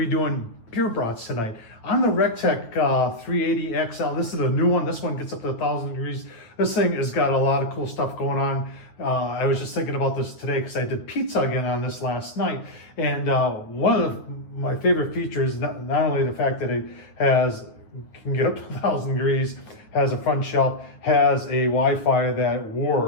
doing beer brats tonight on the Recteq 380 XL. This is a new one. This one gets up to 1,000 degrees. This thing has got a lot of cool stuff going on. I was just thinking about this today because I did pizza again on this last night, and one of my favorite features, not only the fact that it can get up to 1,000 degrees, has a front shelf, has a Wi-Fi that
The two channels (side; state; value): right; late; 9.3 ms